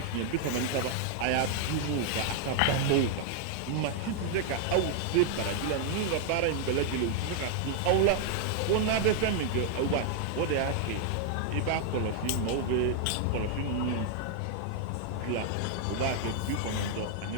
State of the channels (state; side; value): different; both; correlation 0.00